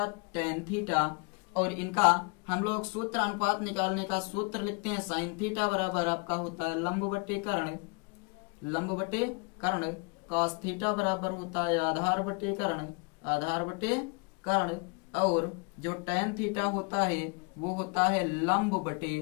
tan theta. और इनका हम लोग सूत्र, अनुपात निकालने का सूत्र लिखते हैं। साइन थीटा बराबर आपका होता है लंब बटे कर्ण। कॉस थीटा बराबर होता है आधार बटे कर्ण। और जो टेन थीटा होता है वो होता है लंब बटे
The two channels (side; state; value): right; quieter; 32.9 dB